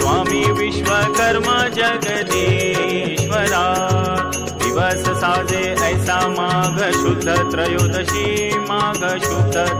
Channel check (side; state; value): both; identical; correlation 1.00